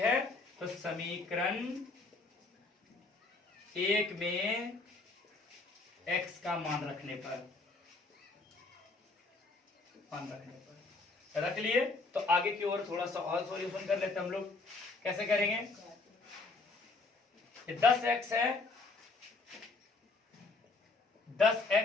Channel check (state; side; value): quieter; right; 3.6 dB